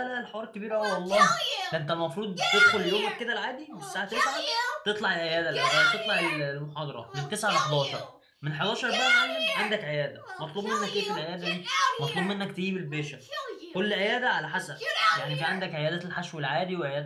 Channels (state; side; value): identical; both; correlation 1.00